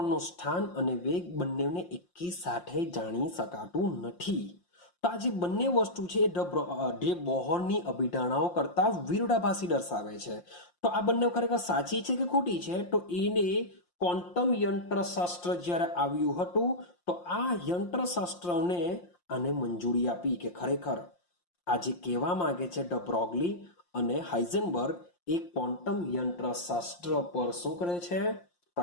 સ્થાન અને વેગ બંનેને એકી સાથે જાણી શકાતું નથી. તો આ જે બંને વસ્તુ છે જે બોહરની અભિધારણાઓ કરતા વિરોધાભાસી દર્શાવે છે. તો આ બંને ખરેખર સાચી છે કે ખોટી છે? તો એને ક્વોન્ટમ યંત્રશાસ્ત્ર જ્યારે આવ્યું હતું તો આ યંત્રશાસ્ત્રને આને મંજૂરી આપી કે ખરેખર આ જે કહેવા માંગે છે ડ બ્રોગલી અને હાઇઝનબર્ગ એ ક્વોન્ટમ યંત્રશાસ્ત્ર પર શું કરે છે?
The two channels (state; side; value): late; right; 5.7 ms